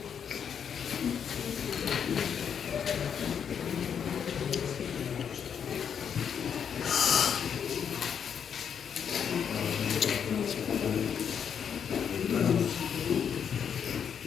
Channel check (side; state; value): right; quieter; 7.7 dB